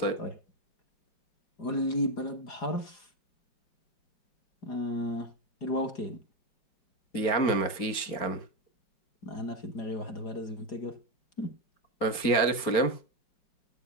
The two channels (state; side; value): late; right; 4.4 ms